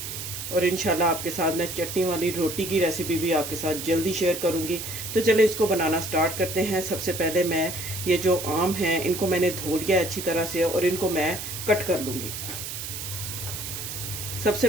और इंशाल्लाह आपके साथ मैं चटनी वाली रोटी की रेसिपी भी आपके साथ जल्दी शेयर करूँगी। तो चले इसको बनाना स्टार्ट करते हैं। सबसे पहले मैं ये जो आम हैं इनको मैंने धो लिया अच्छी तरह से, और इनको मैं कट कर लूँगी। सबसे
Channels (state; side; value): noise; right; hiss, 7 dB below the sound